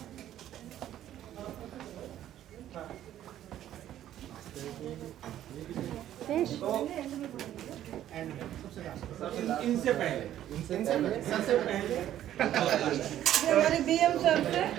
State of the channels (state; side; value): quieter; left; 12.0 dB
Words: इनसे पहले सबसे पहले हमारे BM सर से